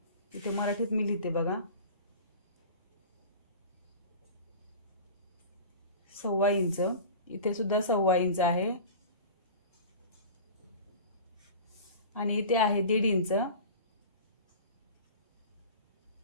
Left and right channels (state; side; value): inverted; both; correlation -0.36